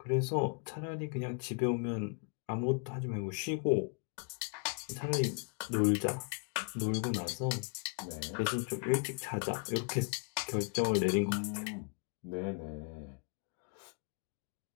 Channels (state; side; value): quieter; right; 38.4 dB